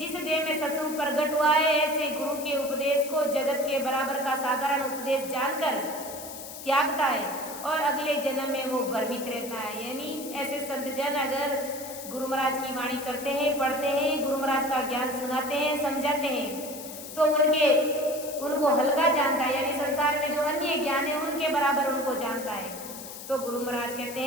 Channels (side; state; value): left; noise; hiss, 12 dB below the sound